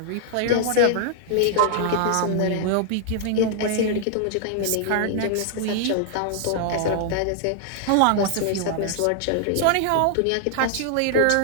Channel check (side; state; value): both; different; correlation 0.00